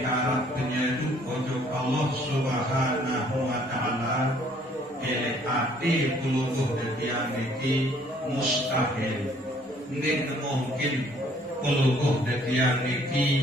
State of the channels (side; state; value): both; normal; correlation 0.61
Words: arah penyedu ojo Allah subhanahu wa ta'ala, ele ati pelungguh detiang niki mustahil. Ini mungkin pelungguh detiang